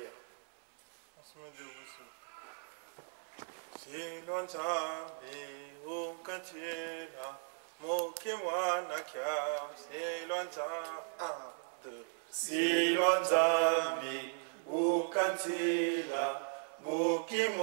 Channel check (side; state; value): left; silent; 53 dB below the other